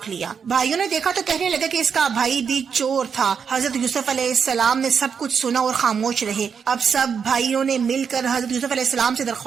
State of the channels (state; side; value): quieter; left; 6.6 dB